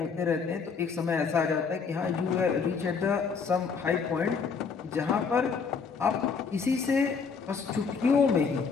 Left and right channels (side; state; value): right; quieter; 5.5 dB